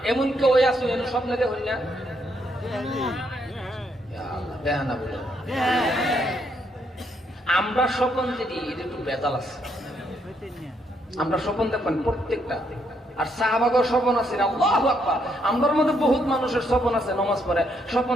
এমন কেউ আছে স্বপ্নে দেখুন না, আমরা স্বপ্ন যদি একটু বেজাল আছে, আমরা স্বপ্ন দেখবেন প্রত্যেকটা। আর সাহাবাগর স্বপ্ন আছে, আল্লাহু আকবার। আমরার মধ্যে বহুত মানুষের স্বপ্ন আছে, নামাজ পড়ে স্বপ্ন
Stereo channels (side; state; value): both; normal; correlation 0.74